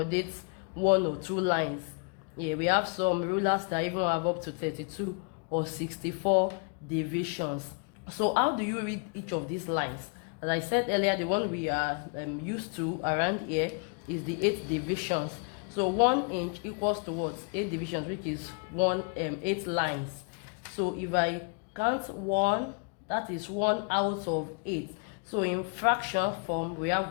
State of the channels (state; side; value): quieter; right; 36.0 dB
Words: 1 or 2 lines. Yeah, we have some rulers that even have up to 32 or 64 divisions. So how do you read each of these lines? As I said earlier, the one we are used to around here is the 8 divisions. So 1 inch equals to what? 8 divisions, which is 8 lines. So if I count 1, that is 1 out of 8. So in fraction form, we